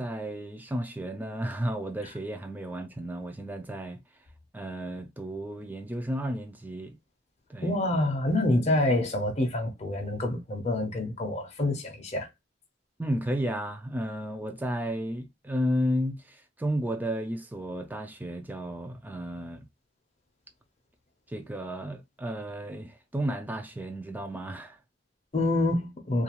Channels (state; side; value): normal; both; correlation 0.68